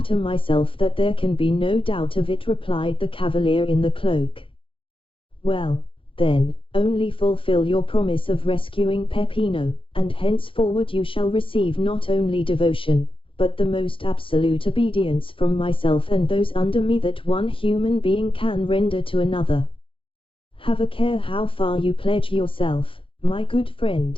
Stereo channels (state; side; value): late; right; 0.25 ms